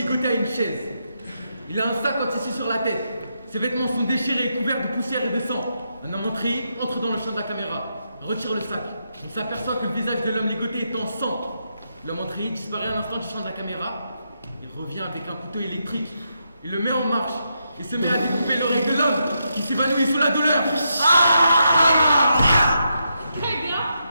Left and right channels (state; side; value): inverted; both; correlation -0.82